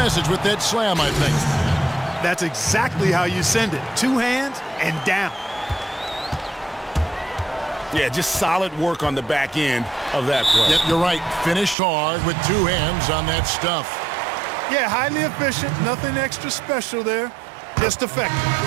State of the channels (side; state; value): left; drops out; at 11.8 s